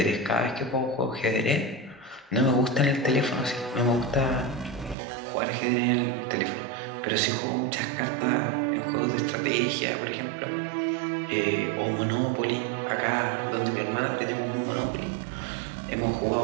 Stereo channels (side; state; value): left; drops out; at 5.0 s